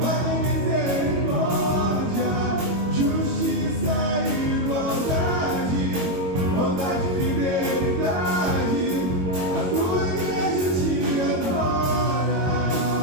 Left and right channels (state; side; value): late; left; 22 ms